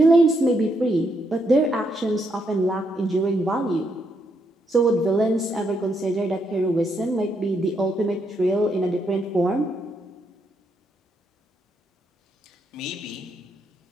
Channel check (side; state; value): both; normal; correlation 0.77